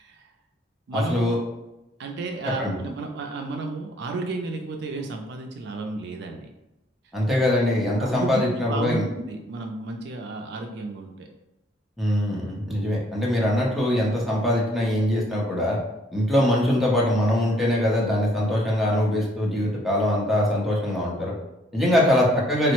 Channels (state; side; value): normal; both; correlation 0.64